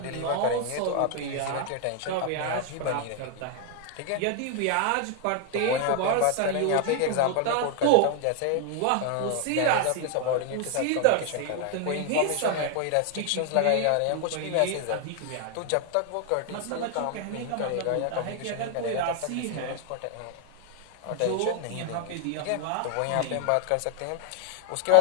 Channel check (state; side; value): different; both; correlation 0.00